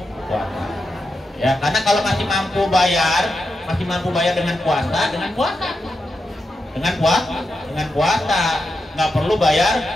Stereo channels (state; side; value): normal; both; correlation 0.87